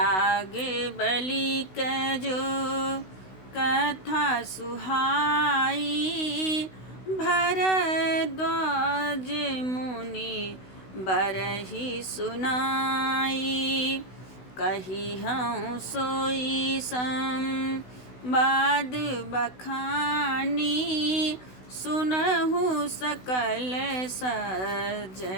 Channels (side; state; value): right; late; 16 ms